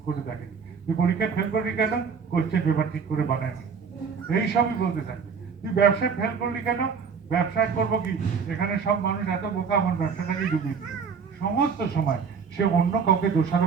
করে দেখেনি, তুই পরীক্ষায় ফেল করি কেন, কোশ্চেন পেপার ঠিক করে বানায়নি, এইসবই বলতে থাকে। তুই ব্যবসায় ফেল করলি কেন, ব্যবসায় করবো কি, এখানে সব মানুষ এত বোকা, আমার ব্যবসাটাকে ডুবিয়ে দিল। সমস্ত সময় সে অন্য কাউকে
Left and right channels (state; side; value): quieter; left; 6.0 dB